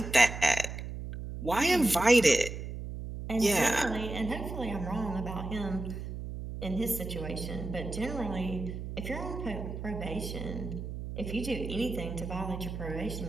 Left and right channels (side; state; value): right; noise; hum, 7 dB below the sound